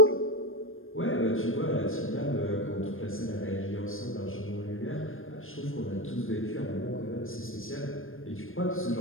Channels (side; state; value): right; late; 0.59 ms